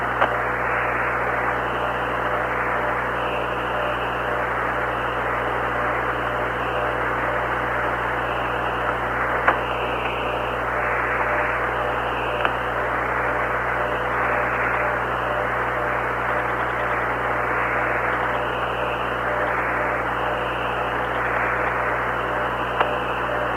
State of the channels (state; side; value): identical; both; correlation 1.00